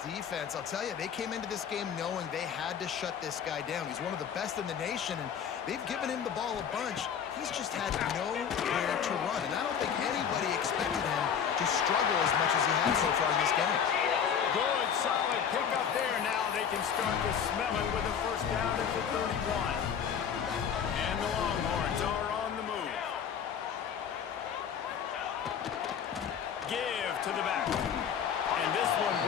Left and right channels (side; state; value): right; quieter; 7.8 dB